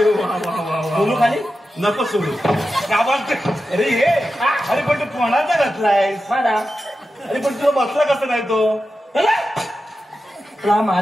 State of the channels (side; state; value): both; normal; correlation 0.91